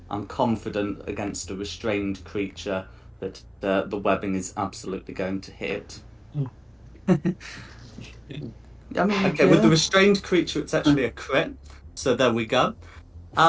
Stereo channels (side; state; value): both; identical; correlation 1.00